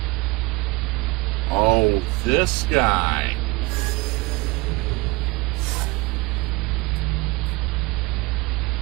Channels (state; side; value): quieter; left; 24.2 dB